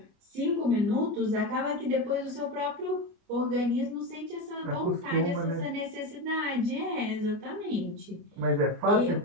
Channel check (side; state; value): left; late; 29 ms